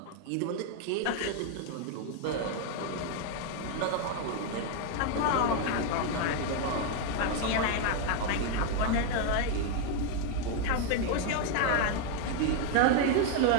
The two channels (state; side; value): different; both; correlation 0.01